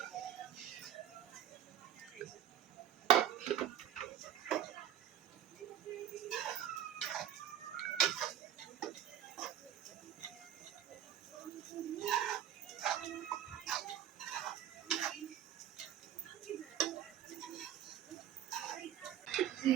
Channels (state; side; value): quieter; left; 10.7 dB